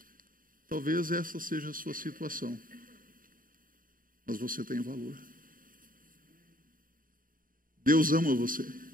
Talvez essa seja a sua situação, mas você tem valor. Deus ama você.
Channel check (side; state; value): left; late; 0.40 ms